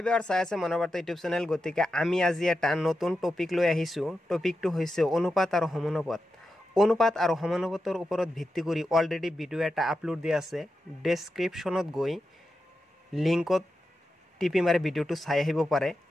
ভিউয়াৰ্স, চাই আছে মনোবাৰ্তা ইউটিউব চেনেল। গতিকে আমি আজি এটা নতুন টপিক লৈ আহিছোঁ। টপিকটো হৈছে অনুপাত আৰু সমানুপাত। অনুপাত আৰু সমানুপাতৰ ওপৰত ভিত্তি কৰি অলৰেডি ভিডিঅ' এটা আপলোড দিয়া আছে। ডেছক্ৰিপশ্যনত গৈ লিংকত টিপি মাৰি ভিডিঅ'টো চাই আহিব পাৰে।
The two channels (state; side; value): normal; both; correlation 0.89